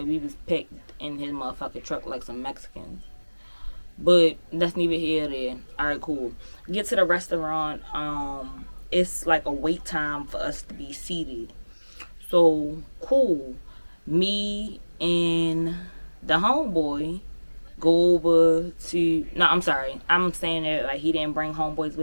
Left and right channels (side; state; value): both; inverted; correlation -1.00